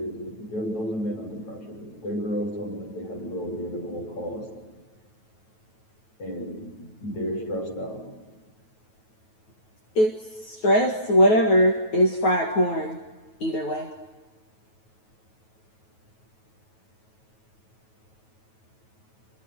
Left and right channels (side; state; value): right; late; 9.2 ms